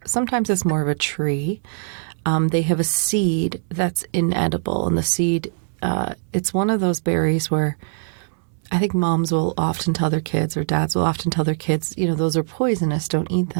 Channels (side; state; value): left; silent; 63 dB below the other